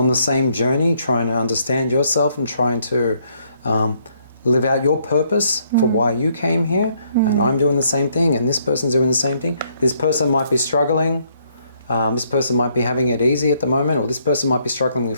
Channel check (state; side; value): inverted; both; correlation -0.70